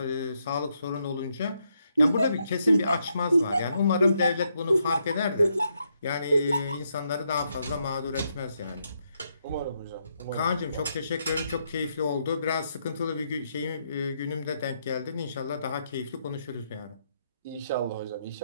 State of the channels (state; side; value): inverted; both; correlation -0.78